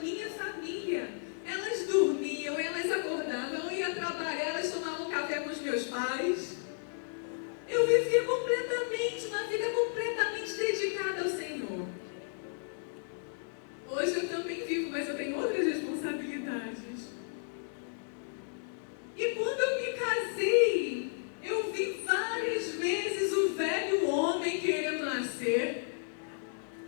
família. Elas dormiam, elas acordavam, eu ia trabalhar, elas tomavam café com os meus pais. Eu vivia completamente, uma vida completamente dedicada ao Senhor. Hoje eu também vivo, mas eu tenho outras responsabilidades. E quando eu me casei, eu vi várias vezes o velho homem querendo nascer.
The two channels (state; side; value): silent; right; digital silence